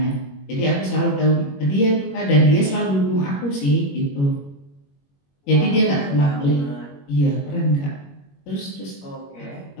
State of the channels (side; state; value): right; late; 21 ms